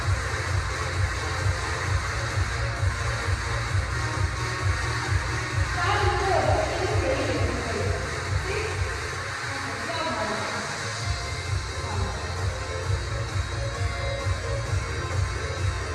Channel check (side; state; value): both; identical; correlation 1.00